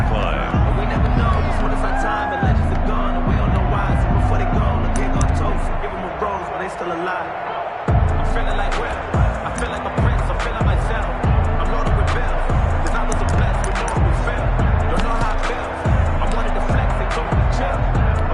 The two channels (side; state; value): both; identical; correlation 1.00